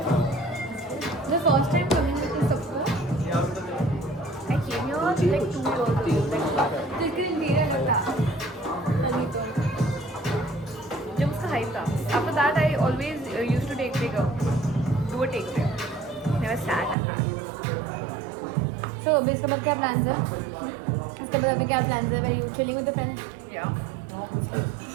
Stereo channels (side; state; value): left; drops out; at 16.9 s